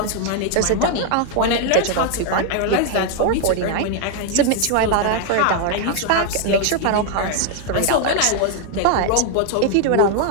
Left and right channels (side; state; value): both; different; correlation 0.00